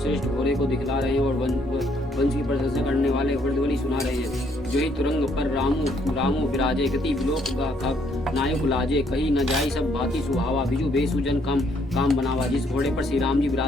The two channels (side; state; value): both; normal; correlation 0.68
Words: घोड़े को दिखला रहे हैं और वंश की प्रशंसा करने वाले वर्दवली सुना रहे हैं। जो ही तुरंग पर रामू विराजे गति विलोक का नायक लाजे कही न जाई सब भांति सुहावा बिजु बेसुजन काम बनावा। जिस घोड़े पर श्री राम जी